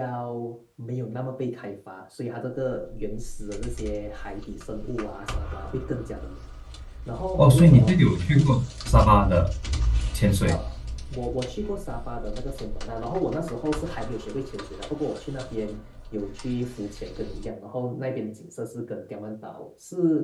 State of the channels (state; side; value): identical; both; correlation 1.00